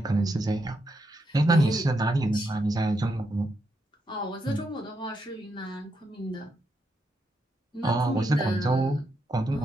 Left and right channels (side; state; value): both; normal; correlation 0.81